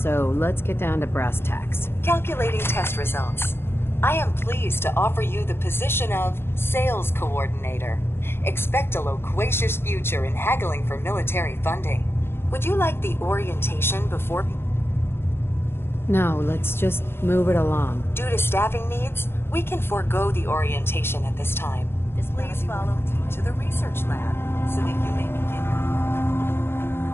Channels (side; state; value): right; late; 0.11 ms